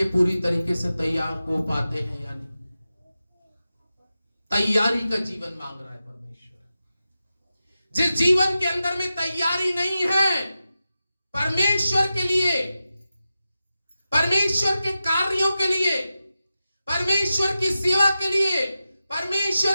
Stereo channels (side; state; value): both; inverted; correlation -0.92